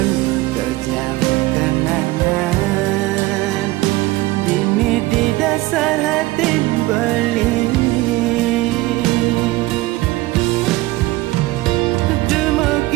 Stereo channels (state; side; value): quieter; left; 19.2 dB